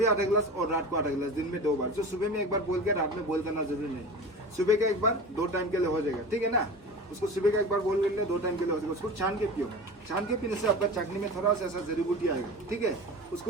आधा गिलास और रात को आधा गिलास, दिन में 2 बार। जो सुबह में 1 बार बोल के रात में बोल करना जरूरी नहीं। सुबह का 1 बार 2 टाइम के लिए हो जाएगा, ठीक है ना। उसको सुबह का 1 बार बोल कर 2 टाइम के लिए हो जाएगा। उसको छान के पियो। छान के पीने से आपका चटनी में थोड़ा सा ऐसा जड़ी बूटी आएगा, ठीक है।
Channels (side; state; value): both; normal; correlation 0.33